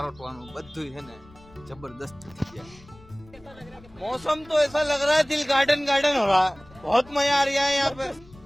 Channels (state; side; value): noise; left; rumble, 23 dB below the sound